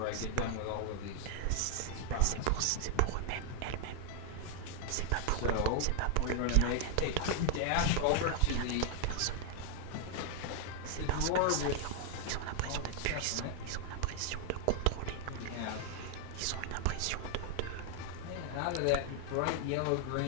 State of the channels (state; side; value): different; both; correlation 0.00